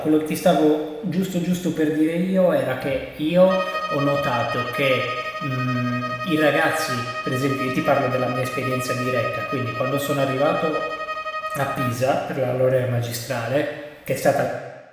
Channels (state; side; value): identical; both; correlation 1.00